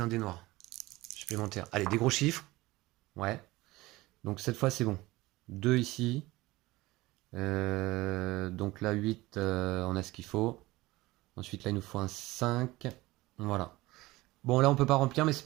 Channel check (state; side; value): quieter; left; 19.6 dB